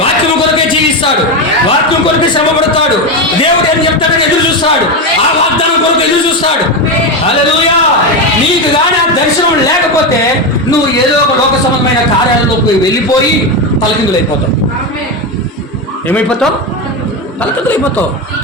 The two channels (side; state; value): both; normal; correlation 0.13